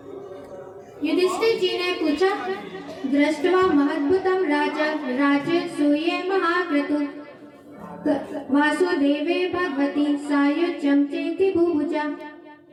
युधिष्ठिर जी ने पूछा, दृष्ट्वा महद्भुतं राज्य सूये महाक्रतु वासुदेवे भगवती सायुज्यं चेति भुभुजा।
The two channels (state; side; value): identical; both; correlation 1.00